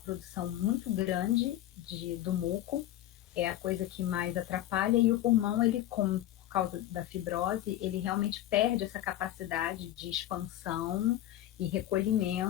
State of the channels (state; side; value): quieter; right; 13.5 dB